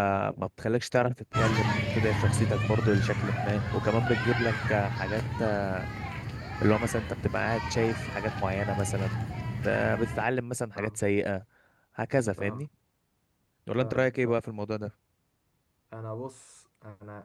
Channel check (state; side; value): identical; both; correlation 1.00